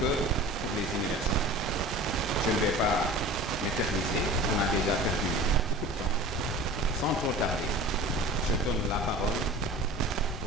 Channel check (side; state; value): both; normal; correlation 0.38